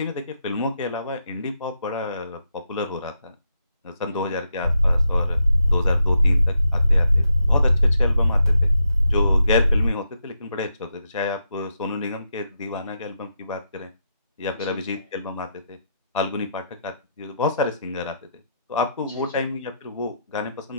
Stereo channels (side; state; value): both; inverted; correlation -0.82